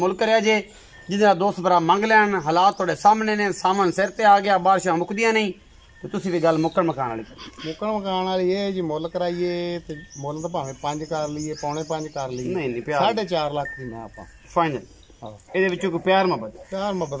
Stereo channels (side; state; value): both; identical; correlation 1.00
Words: है जे जिहदा दोस्त भरा मंग लैन। हालात थोड़े सामने ने, सामन सिर ते आ गया, बारिशां मुकदियां नहीं ते तुसीं भी गल मुक्कण मकान वाली मुकान वाली ये जी मुल कराइए ते मुल तो भावें 5 कर लीए, 4.5 कर लीए, नहीं प्यार 4.5 लाख दी मैं आपां फाइनल। ਇਹਦੇ ਵਿੱਚੋਂ ਕੋਈ ਪਿਆਰ